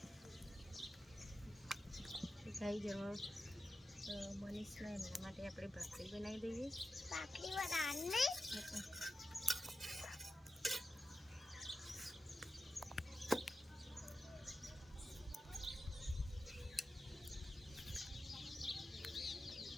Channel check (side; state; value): both; normal; correlation 0.91